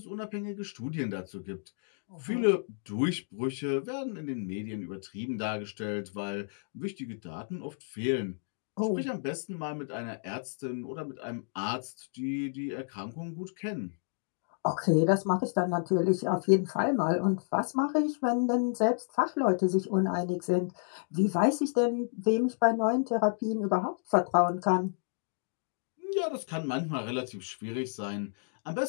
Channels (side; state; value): right; silent; digital silence